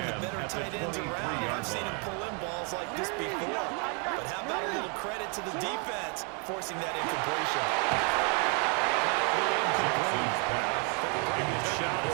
the better tight ends around. I've seen him pull in balls like this before. But how about a little credit to the defense forcing that incompletion? Good shot as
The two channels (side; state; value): left; quieter; 36.8 dB